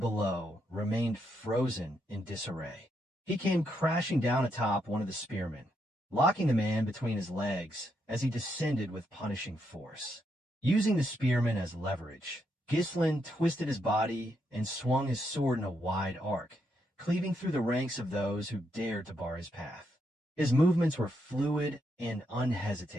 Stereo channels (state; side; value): normal; both; correlation 0.79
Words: remained frozen in disarray. He came crashing down atop one of the spearmen, locking the man between his legs as he descended with punishing force. Using the spearmen as leverage, Ghislain twisted his body and swung his sword in a wide arc, cleaving through the ranks of those who dared to bar his path. His movements were fluid and